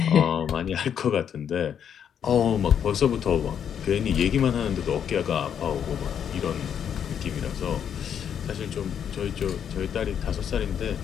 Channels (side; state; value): right; quieter; 8.5 dB